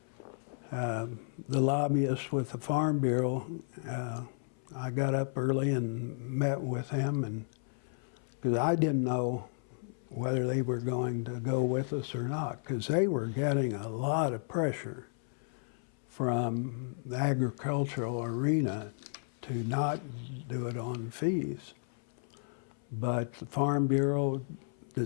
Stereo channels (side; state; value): right; silent; 56 dB below the other